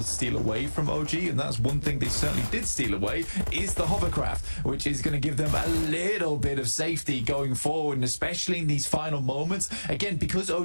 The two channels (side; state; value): both; inverted; correlation -1.00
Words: to steal away from OG. And that's one thing they certainly did steal away is the hovercraft, which is going to give them a little bit of safety going forward, and especially in these final moments. Again, because